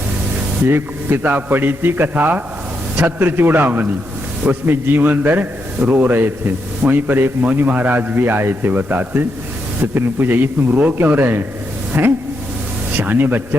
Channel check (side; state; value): both; normal; correlation 0.82